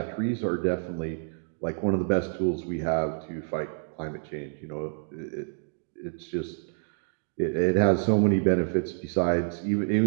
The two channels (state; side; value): silent; left; digital silence